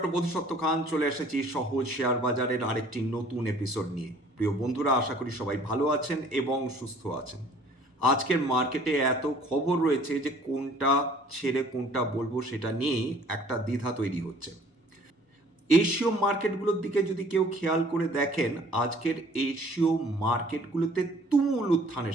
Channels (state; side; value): normal; both; correlation 0.54